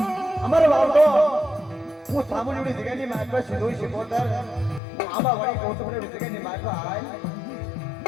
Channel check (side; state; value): right; drops out; at 4.8 s